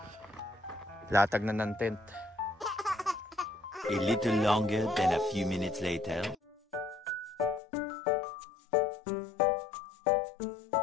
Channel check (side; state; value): right; drops out; at 7.6 s